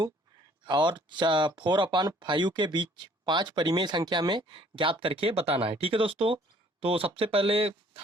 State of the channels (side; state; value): both; normal; correlation 0.58